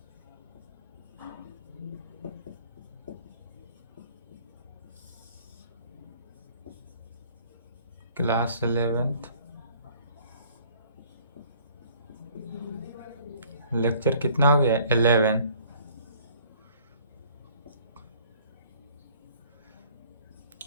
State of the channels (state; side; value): inverted; both; correlation -0.56